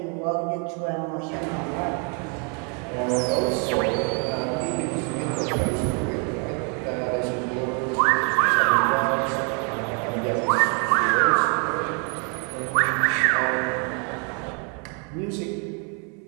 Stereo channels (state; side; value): quieter; left; 37.6 dB